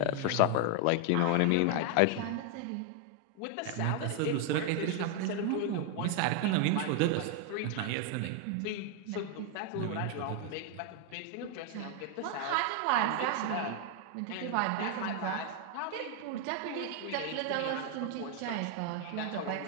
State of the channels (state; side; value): different; both; correlation 0.00